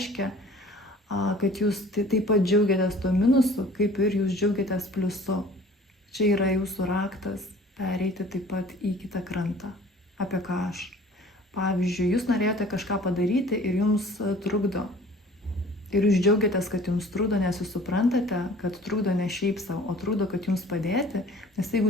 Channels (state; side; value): normal; both; correlation 0.49